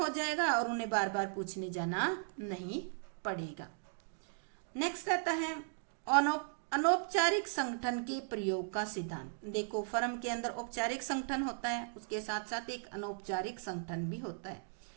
जाएगा और उन्हें बार बार पूछने जाना नहीं पड़ेगा। नेक्स्ट आता है अनौपचारिक संगठन के प्रयोग का सिद्धांत। देखो फर्म के अंदर औपचारिक संगठन होता है, उसके साथ साथ एक अनौपचारिक संगठन भी होता है,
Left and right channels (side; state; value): left; silent; digital silence